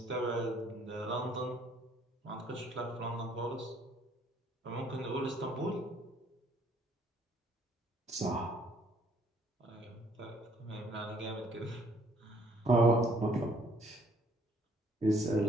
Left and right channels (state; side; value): normal; both; correlation 0.63